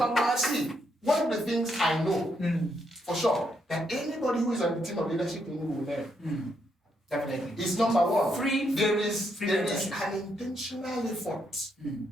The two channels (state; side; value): normal; both; correlation 0.77